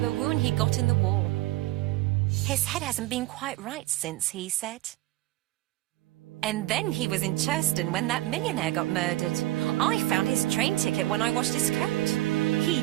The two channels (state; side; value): quieter; left; 17.3 dB